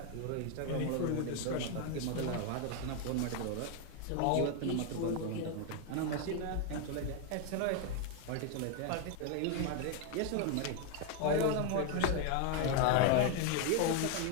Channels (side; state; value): both; different; correlation 0.01